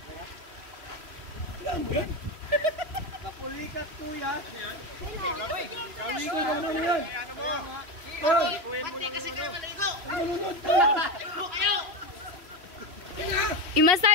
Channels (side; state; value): left; late; 3.1 ms